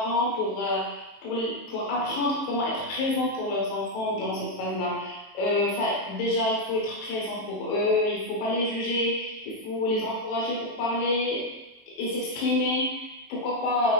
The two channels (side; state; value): right; late; 18 ms